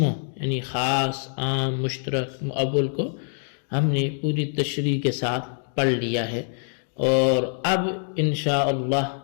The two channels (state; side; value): silent; right; digital silence